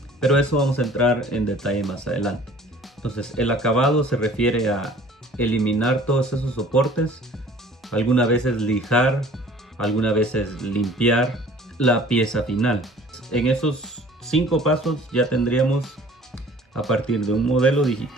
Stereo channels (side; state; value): both; normal; correlation 0.50